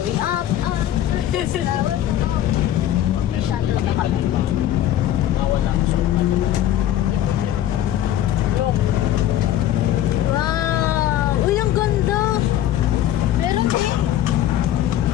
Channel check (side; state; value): right; quieter; 12.1 dB